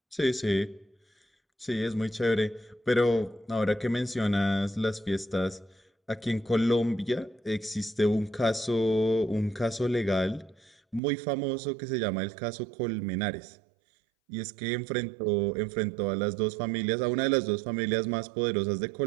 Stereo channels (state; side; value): drops out; left; at 11.0 s